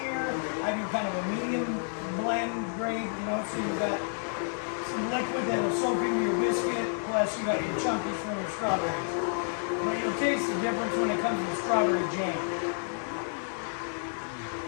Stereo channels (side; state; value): right; silent; 58 dB below the other